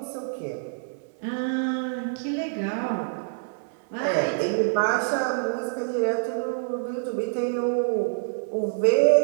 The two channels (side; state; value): left; silent; digital silence